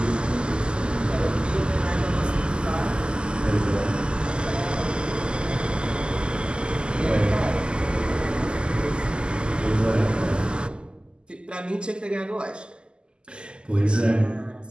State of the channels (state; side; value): late; left; 0.049 ms